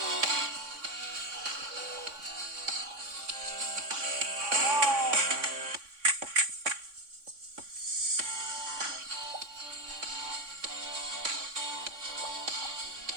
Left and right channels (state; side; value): late; left; 3.6 ms